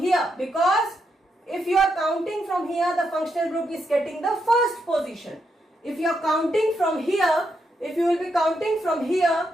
because if you are counting from here, the functional group is getting the first position. If you are counting from here, if you will be counting from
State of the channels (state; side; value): normal; both; correlation 0.81